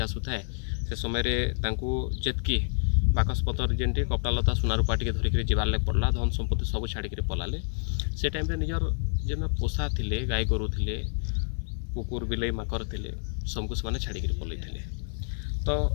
आसूए से समय जेतकी बाकसपतर जेनटी कपड़ा लता सुनारूपा टे धरिक जीवार पड़ला धन संपत्ति सब छाड़िक पलाले से टाइम निजर जेन पोषा थे गाई गोरु थे कुकुर बिलई माकर थे सबको से छाड़िक पलई थे तो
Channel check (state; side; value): silent; right; digital silence